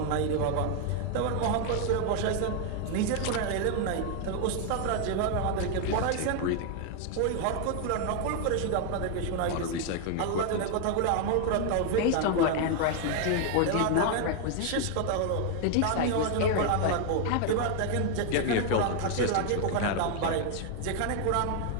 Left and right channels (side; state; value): both; different; correlation 0.00